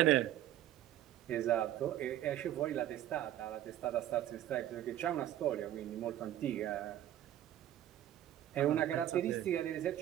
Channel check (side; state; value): left; quieter; 12.4 dB